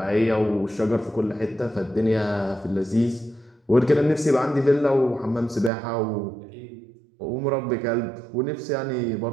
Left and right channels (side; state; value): left; drops out; at 5.7 s